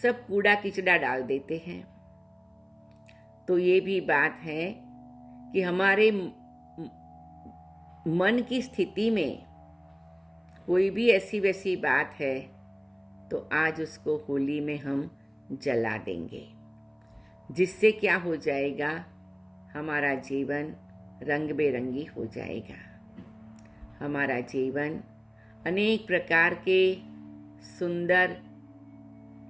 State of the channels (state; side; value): identical; both; correlation 1.00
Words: कूड़ा किचड़ा डाल देते हैं। तो ये भी बात है कि हमारे मन की स्थिति में कोई भी ऐसी वैसी बात है तो आज उसको होली में हम जला देंगे, जिससे क्या हो जाएगा? हमारा जीवन रंग बेरंगी हो जाएगा। हमारा जीवन अनेक प्रकार के सुंदर